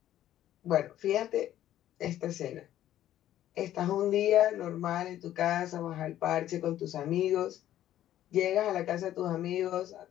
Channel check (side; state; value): right; quieter; 12.5 dB